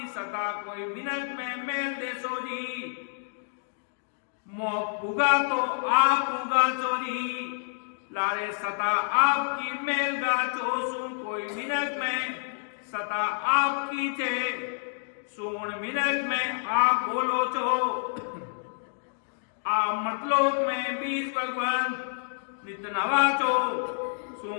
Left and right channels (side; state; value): right; silent; digital silence